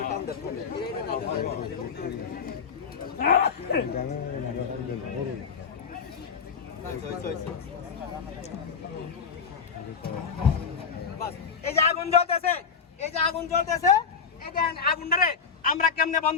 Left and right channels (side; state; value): right; quieter; 6.1 dB